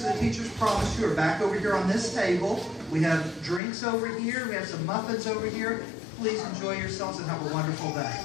the teachers promised you are back over here on this table. We have drinks over here. We have some muffins over here. Please enjoy yourselves and have a wonderful day.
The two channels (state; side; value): drops out; right; at 3.6 s